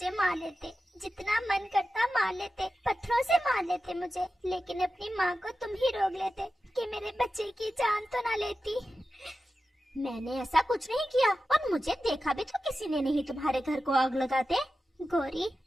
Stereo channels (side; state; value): both; normal; correlation 0.92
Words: मार लेते, जितना मन करता मार लेते, पत्थरों से मार लेते मुझे, लेकिन अपनी माँ को तुम ही रोक लेते कि मेरे बच्चे की जान तो ना लेती। मैंने ऐसा कुछ नहीं किया और मुझे देखा भी तो किसी ने नहीं तुम्हारे घर को आग लगाते। गौरी,